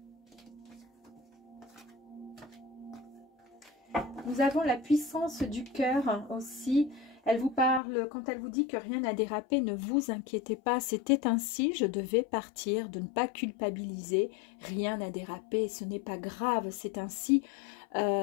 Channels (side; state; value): right; drops out; at 7.8 s